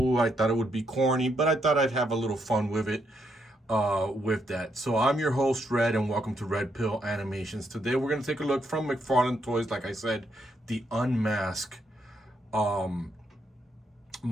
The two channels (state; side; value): normal; both; correlation 0.77